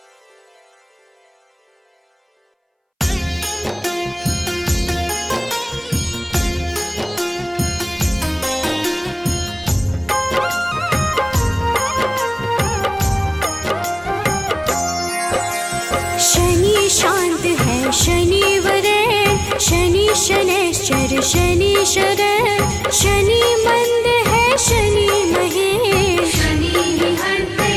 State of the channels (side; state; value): both; identical; correlation 1.00